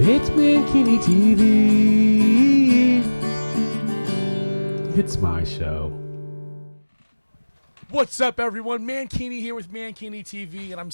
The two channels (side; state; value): both; inverted; correlation -1.00